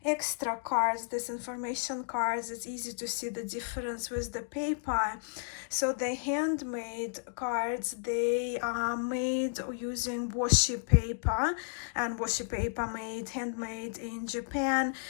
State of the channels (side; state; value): right; silent; digital silence